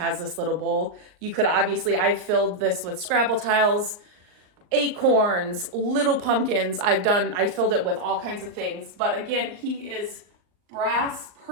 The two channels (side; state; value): left; late; 38 ms